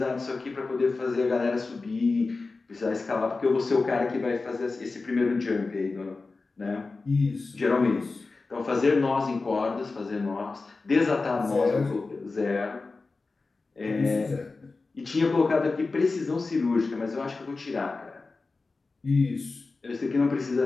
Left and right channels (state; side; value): quieter; right; 3.8 dB